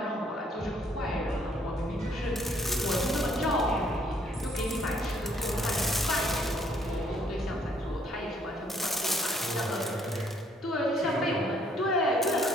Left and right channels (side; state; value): both; normal; correlation 0.66